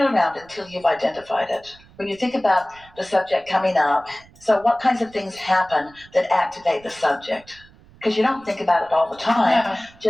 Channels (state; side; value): noise; right; rumble, 26 dB below the sound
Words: around until you've identified it. When you think about the subject coming up, so what kinds of things happen that activate the subject? Because you don't think about it all the time, No.